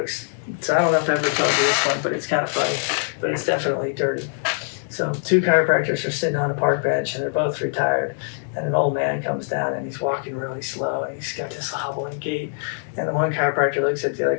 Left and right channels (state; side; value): silent; right; digital silence